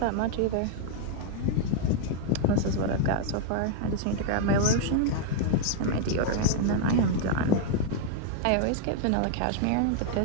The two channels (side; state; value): both; different; correlation 0.00